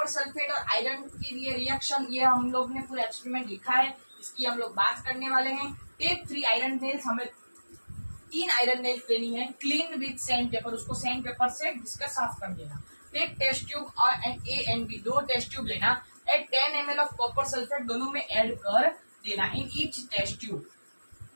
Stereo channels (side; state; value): both; inverted; correlation -1.00